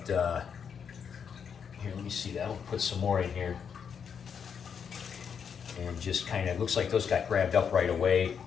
here, let me see that. I'll put some more in here. And just kind of, looks like those got grabbed up right away.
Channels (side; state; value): right; quieter; 7.1 dB